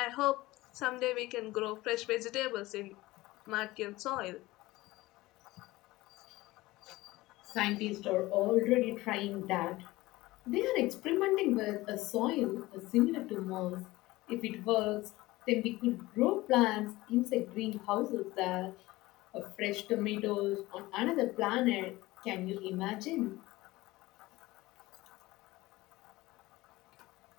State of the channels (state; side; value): quieter; right; 19.1 dB